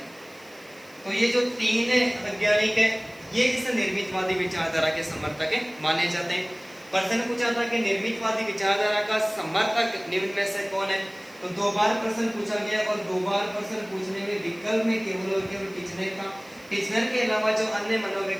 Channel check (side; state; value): right; noise; hiss, 26 dB below the sound